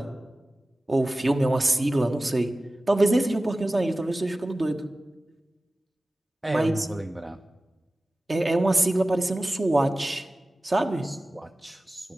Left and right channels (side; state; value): both; normal; correlation 0.97